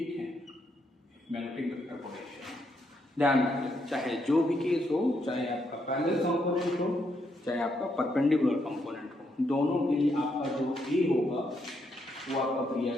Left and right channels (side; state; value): both; normal; correlation 0.77